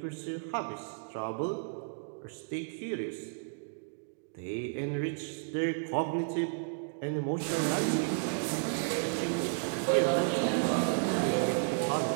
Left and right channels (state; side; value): silent; left; digital silence